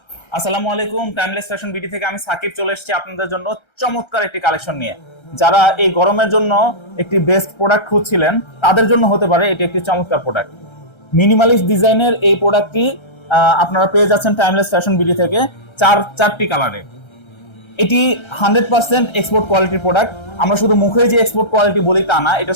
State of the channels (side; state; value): right; late; 1.3 ms